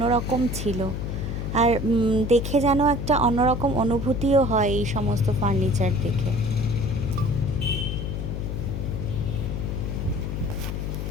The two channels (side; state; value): left; noise; hum, 3 dB below the sound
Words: ছিল। আর দেখে যেন একটা অন্যরকম অনুভূতিও হয় এই সমস্ত ফার্নিচার দেখে।